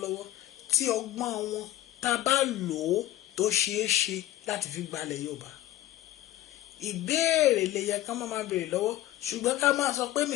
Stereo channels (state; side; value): quieter; right; 14.5 dB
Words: tí ọgbọ́n wọn tá bá lò ó tó ṣeé ṣe láti fi gbalẹ̀ Yorùbá. Ìbéèrè lè yẹ ká máa béèrè lọ́wọ́, ṣùgbọ́n ká máa sọ pé